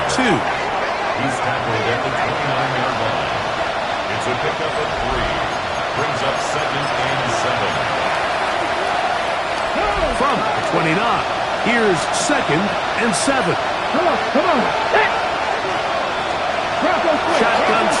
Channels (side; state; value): both; identical; correlation 1.00